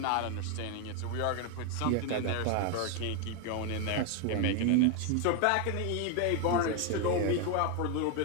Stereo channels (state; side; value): different; both; correlation 0.01